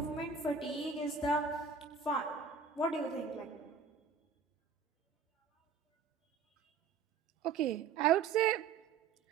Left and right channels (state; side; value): quieter; left; 5.6 dB